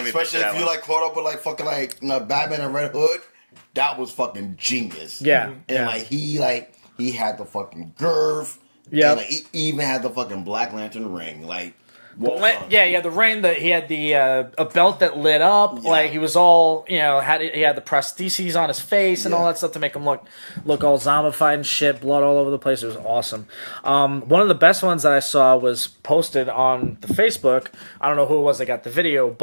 especially if you like caught up with like fucking like Batman and Red Hood. That was fucking genius. Yeah. And he had the fucking girth. Yeah. And he even had the fucking Black Lantern ring. Like, Yeah, the ring that he had a belt that lit up. Yeah. Like he was all he had the prostheses on his face and all that stuff to make him look all zombified and shit, blood all over the place. It was awesome. One of the best ones that I saw was posted on the Facebook. I don't know who it was that got the video,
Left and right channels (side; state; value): both; inverted; correlation -1.00